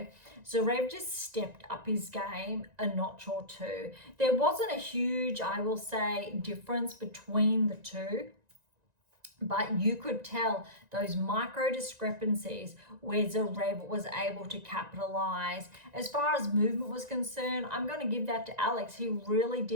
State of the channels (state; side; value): late; left; 1.9 ms